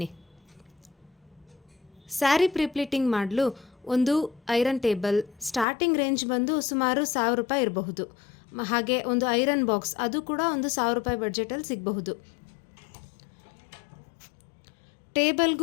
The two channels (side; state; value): right; drops out; at 5.7 s